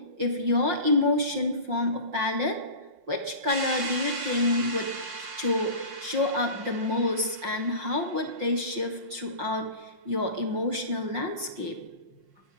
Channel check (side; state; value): left; late; 5.6 ms